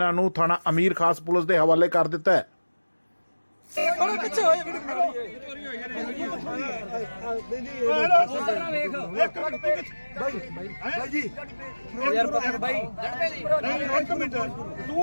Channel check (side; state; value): both; inverted; correlation -1.00